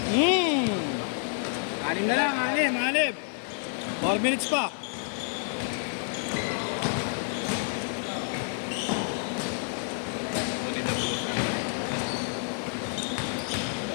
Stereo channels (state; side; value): silent; right; 59 dB below the other